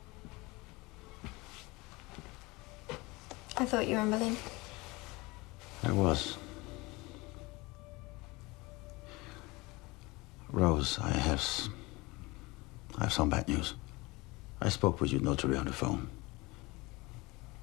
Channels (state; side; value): quieter; right; 23.5 dB